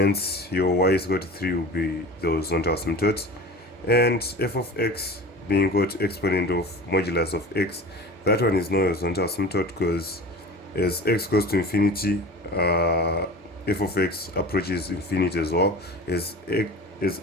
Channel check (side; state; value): both; normal; correlation 0.36